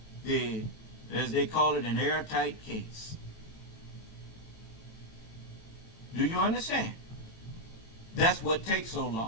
the as they call it, an airtight case. Do you understand? That's what takes so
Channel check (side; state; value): right; late; 18 ms